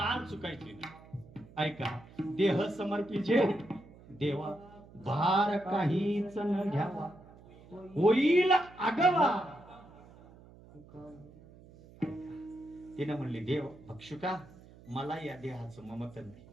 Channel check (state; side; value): noise; right; hum, 22 dB below the sound